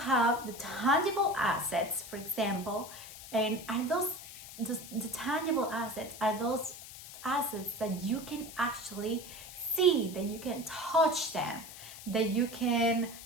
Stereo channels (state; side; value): noise; left; hiss, 14 dB below the sound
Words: the tangible assets, for example, and are those the tangible assets are those assets that you can actually see, that you can touch them, that you can